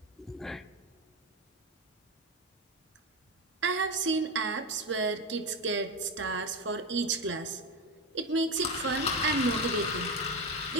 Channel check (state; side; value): normal; both; correlation 0.15